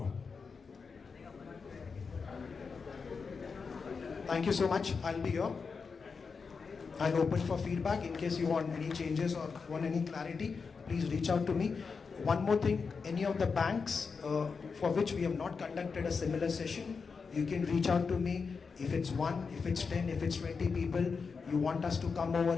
Thank you so much. I'll be here. I'm open for feedback. In case you want any changes or want any clarity, please reach out to me. One more thing, any of the banks for which we have not conducted a similar session, you can reach out to me. If it's 1, if it's 10, if it's 20 people, you want us to come over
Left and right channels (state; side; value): quieter; right; 5.2 dB